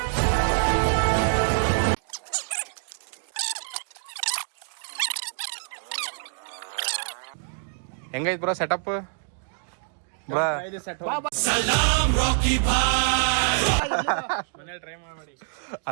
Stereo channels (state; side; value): silent; left; digital silence